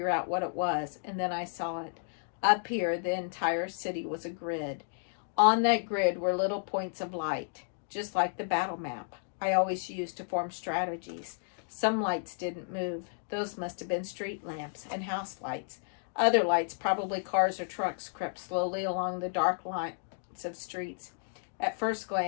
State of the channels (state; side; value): silent; right; digital silence